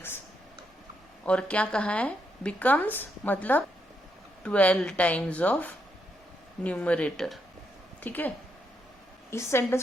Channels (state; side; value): normal; both; correlation 0.79